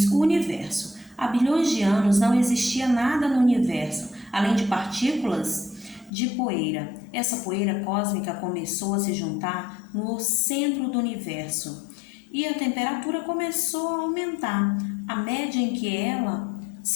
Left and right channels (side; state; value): right; drops out; at 6.1 s